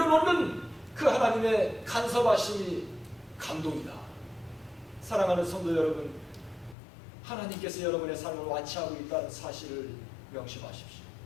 그 하나님의 간섭하심이 감동이다. 사랑하는 성도 여러분, 하나님께서 여러분의 삶을 완치하고 있다는 사실을 명심하십시오.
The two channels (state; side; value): drops out; right; at 6.8 s